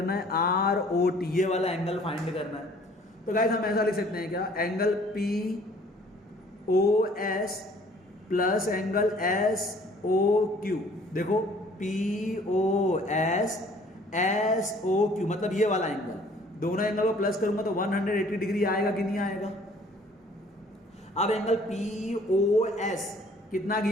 है ROT, ये वाला एंगल फाइंड करना है। तो गाइस हम ऐसा लिख सकते हैं क्या? Angle POS plus angle SOQ। देखो POS SOQ मतलब ये वाला एंगल, दोनों एंगल को प्लस करूंगा तो 180 डिग्री आएगा कि नहीं आएगा? अब एंगल POS कितना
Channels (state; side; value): normal; both; correlation 0.56